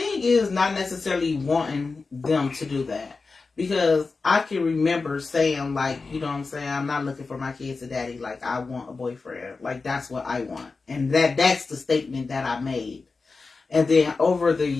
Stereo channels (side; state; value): right; quieter; 4.2 dB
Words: is not necessarily wanting them to do that. Because I can remember saying, like, you know what I'm saying, I'm not looking for my kids a daddy, like, I want a boyfriend. Like, that's what I want. And that's the statement that I made. And then over the